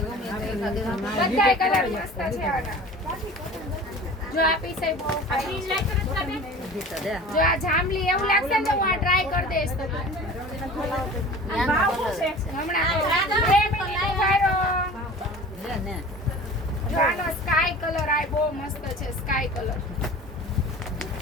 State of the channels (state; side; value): normal; both; correlation 0.40